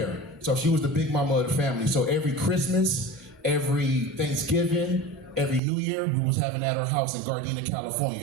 So she was the big mama of the family. So every Christmas, every Thanksgiving, every New Year, we was having at our house in Gardena,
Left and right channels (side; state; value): left; drops out; at 5.6 s